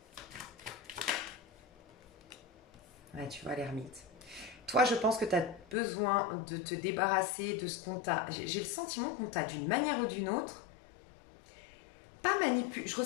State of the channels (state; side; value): drops out; right; at 5.8 s